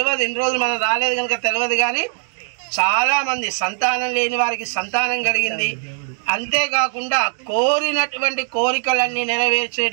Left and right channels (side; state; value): left; silent; 60 dB below the other